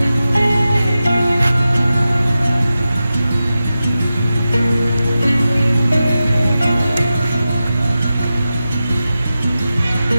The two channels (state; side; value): inverted; both; correlation -0.93